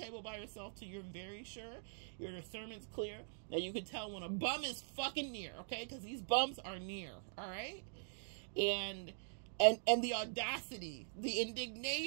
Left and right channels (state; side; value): silent; left; digital silence